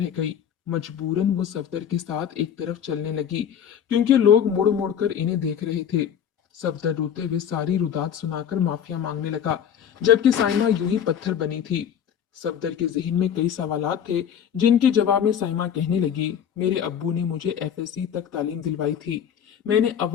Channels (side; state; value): right; quieter; 8.7 dB